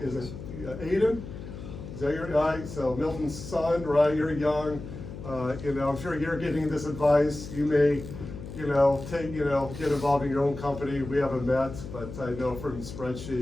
Aiden? Is that your guy? So Milton's son, right? You're young. I'm sure you're getting this advice. You may, get involved in your own company. We haven't met, but I know from the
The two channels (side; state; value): left; noise; hum, 11 dB below the sound